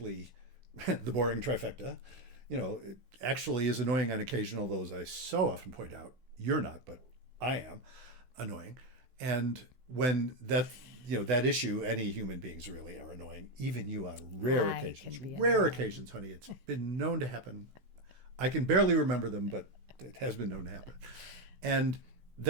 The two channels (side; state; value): left; late; 16 ms